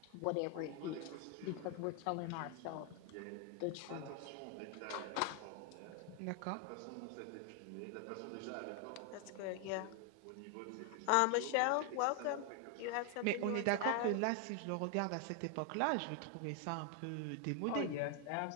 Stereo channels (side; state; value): both; different; correlation 0.00